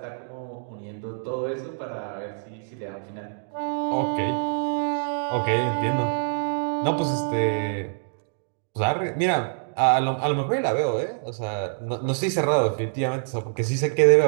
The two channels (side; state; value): left; silent; digital silence